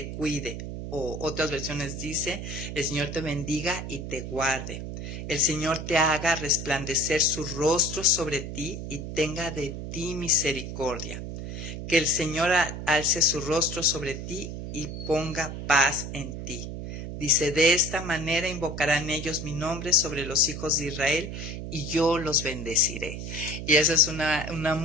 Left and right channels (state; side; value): noise; right; hum, 7 dB below the sound